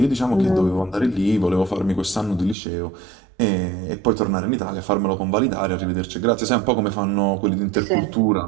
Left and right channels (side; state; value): left; drops out; at 2.6 s